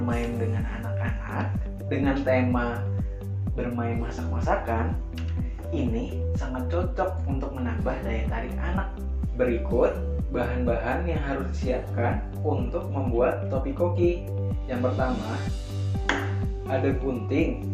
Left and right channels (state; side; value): identical; both; correlation 1.00